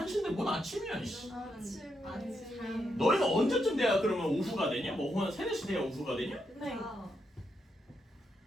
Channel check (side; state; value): both; normal; correlation 0.81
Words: 뭔 아침이야? 이씨. 아침에. 너희는 언제쯤 돼야 그러면 오후가 되냐? 뭐 오후 한 3, 4시 돼야 오후가 되냐? 네.